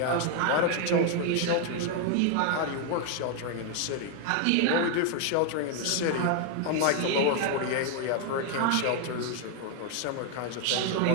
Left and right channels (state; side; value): different; both; correlation 0.01